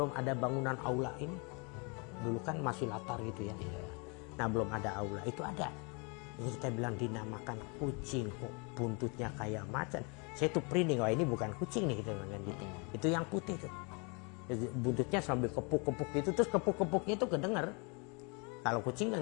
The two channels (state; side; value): quieter; right; 32.7 dB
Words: ada bangunan aula ini. Dulu kan masih latar gitu ya. Nah belum ada aula, itu ada. Ini kita bilang dinamakan kucing, kok buntutnya kayak macan. Saya tuh merinding, wah ini bukan kucing nih kita bilang gitu. Itu yang putih tuh. Buntutnya sambil kepuk-kepuk gitu, terus kepuk-kepuknya itu kedengar. Kalau kucing kan